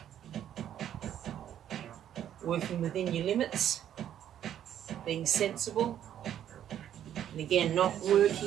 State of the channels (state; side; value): quieter; left; 10.5 dB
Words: working within your limits, being sensible, and again, not